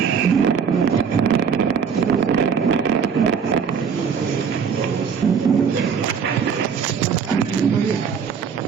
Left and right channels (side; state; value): left; quieter; 6.5 dB